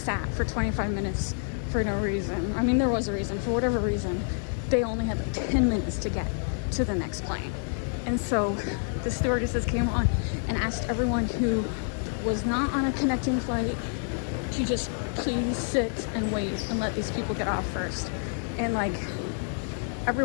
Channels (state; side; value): silent; right; 59 dB below the other